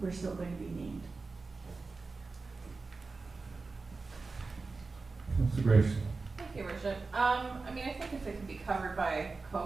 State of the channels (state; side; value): quieter; left; 4.0 dB